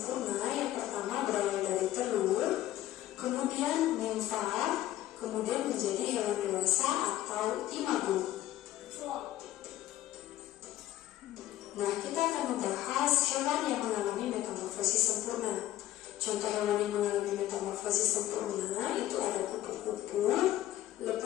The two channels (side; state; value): right; quieter; 14.1 dB